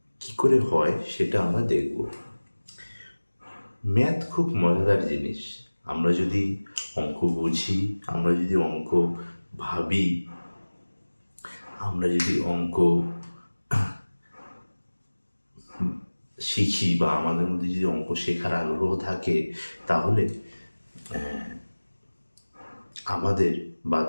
কী করে হয় সেটা আমরা দেখব। ম্যাথ খুব মজাদার জিনিস। আমরা যদি অঙ্ক বুঝি, আমরা যদি অঙ্ক ভাবি, আমরা যদি অঙ্ক শিখি, বা আমাদের মধ্যে যদি অঙ্ক শেখার আগ্রহ থাকে, তাহলে আমাদের বা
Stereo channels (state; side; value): inverted; both; correlation -1.00